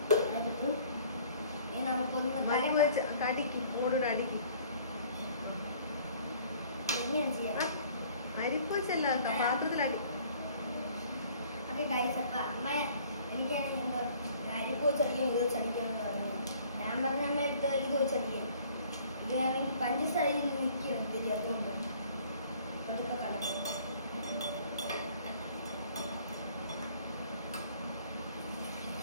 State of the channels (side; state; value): both; inverted; correlation -0.55